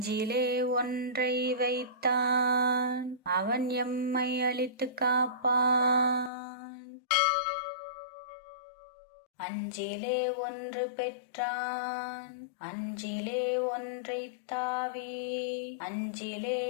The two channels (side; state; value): right; drops out; at 6.3 s